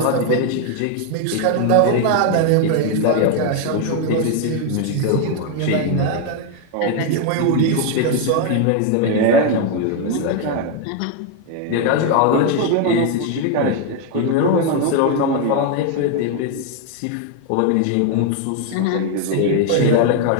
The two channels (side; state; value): both; different; correlation 0.01